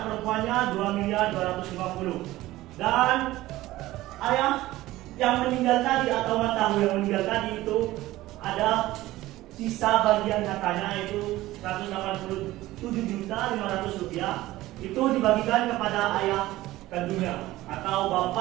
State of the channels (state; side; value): quieter; left; 16.9 dB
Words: perempuannya 2.250.000. Dan ayah yang meninggal tadi atau Matamu yang meninggal tadi itu ada sisa bagian hartanya yaitu 187.500.000 rupiah, itu dibagikan kepada ayah kandungnya atau